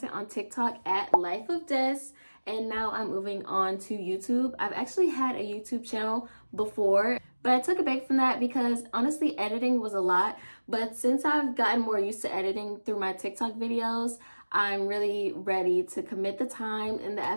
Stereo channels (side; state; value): both; inverted; correlation -1.00